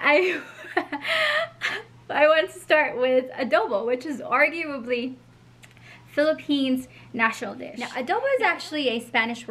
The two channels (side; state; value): both; identical; correlation 1.00